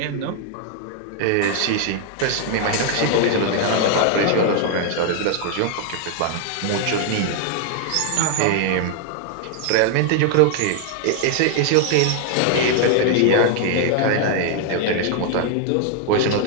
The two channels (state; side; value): different; both; correlation 0.00